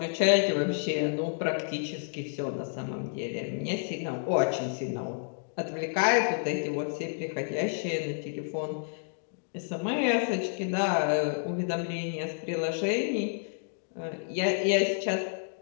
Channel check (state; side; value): silent; right; digital silence